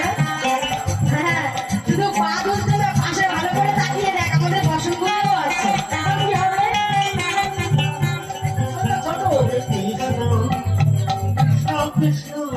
হ্যাঁ, শুধু পা দুলছে না, পাশে ভালো করে তাকিয়ে দেখ, আমাদের বসনগুলো আছে। এখন কি হবে? ছোট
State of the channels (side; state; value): both; identical; correlation 1.00